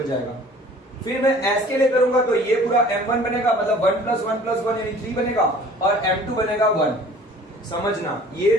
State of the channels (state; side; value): normal; both; correlation 0.49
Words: जाएगा। फिर मैं s के लिए करूंगा तो ये पूरा m1 बनेगा, मतलब 1 + 1 + 1 यानी 3 बनेगा और m2 बनेगा 1। समझना, ये